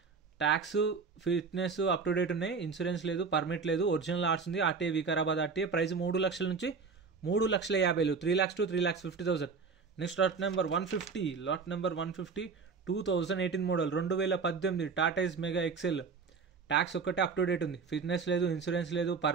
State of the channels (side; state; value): left; quieter; 5.1 dB